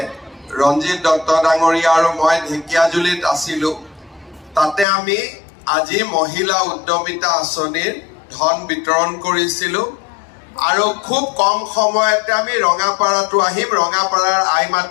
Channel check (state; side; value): drops out; right; at 4.9 s